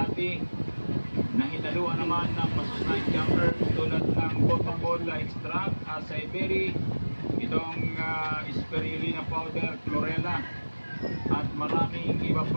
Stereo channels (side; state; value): both; inverted; correlation -1.00